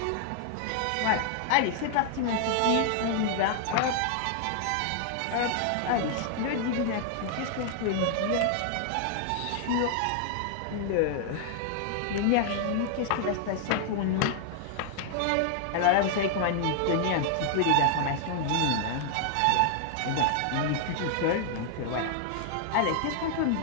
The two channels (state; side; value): different; both; correlation 0.00